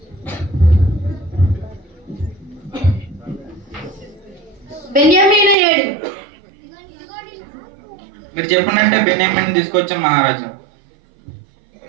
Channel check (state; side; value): drops out; left; at 5.6 s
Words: బెన్యామీను ఏడు? మీరు చెప్పినట్టే బెన్యామిన్ తీసుకొచ్చాను మహారాజా.